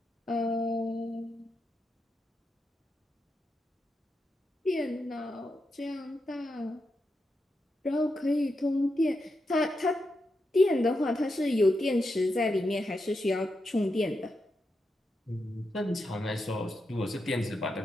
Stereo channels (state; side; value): normal; both; correlation 0.86